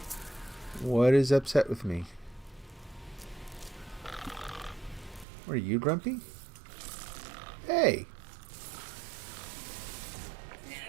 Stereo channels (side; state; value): left; drops out; at 5.2 s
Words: What is upset with me? Are you grumpy? Hey!